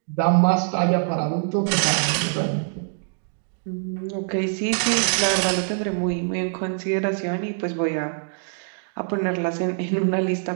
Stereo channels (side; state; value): left; silent; digital silence